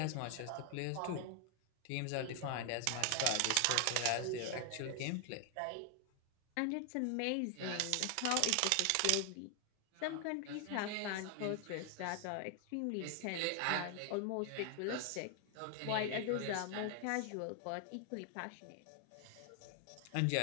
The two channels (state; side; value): different; both; correlation 0.00